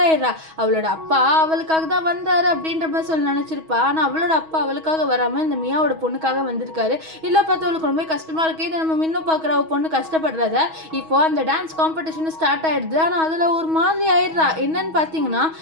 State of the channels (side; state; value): left; late; 6.2 ms